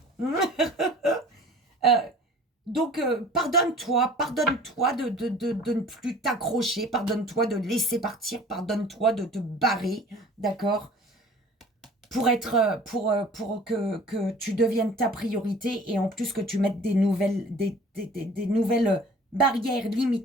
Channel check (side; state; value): both; normal; correlation 0.46